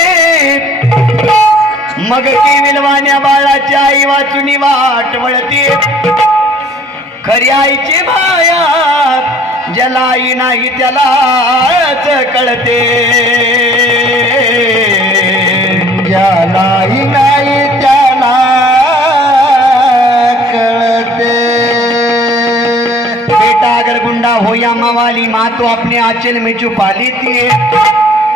मग की विलवाण्या बाळाची आई वाचुनी वाट वळती, खरी आईची माया ज्याला आई नाही त्यालाच कळते, ज्याला आई नाही त्याला कळते. बेटा अगर गुंडा हो या मवाली, माँ तो अपने आंचल में छुपा लेती है,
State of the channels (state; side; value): normal; both; correlation 0.54